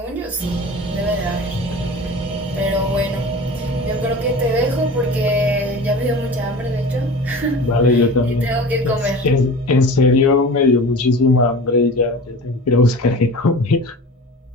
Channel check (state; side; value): normal; both; correlation 0.36